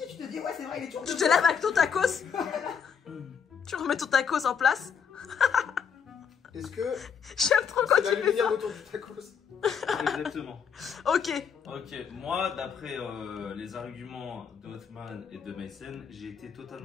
Tu te dis, ouais, c'est vrai, il est toujours. Tu te lèves avec ton tacos. Tu remets ton tacos en place. Est-ce que J'aime trop quand c'est tu fais l'aluminium ça. autour du tacos? Exactement. Ok. Ok, moi, d'après les arguments de Othman et de Mason, j'ai été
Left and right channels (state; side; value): quieter; right; 7.0 dB